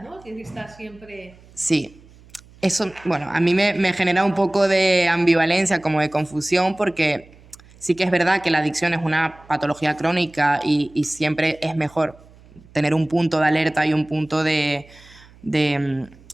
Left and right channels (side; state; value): right; noise; hum, 25 dB below the sound